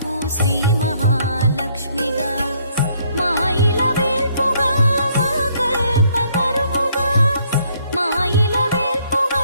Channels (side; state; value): both; inverted; correlation -0.67